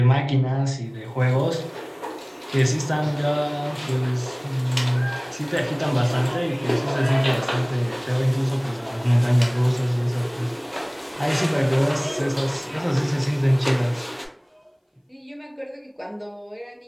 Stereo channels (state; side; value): identical; both; correlation 1.00